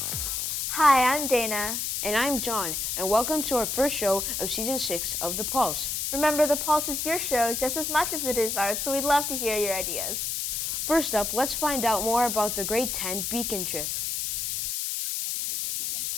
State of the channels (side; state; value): left; noise; hiss, 1 dB below the sound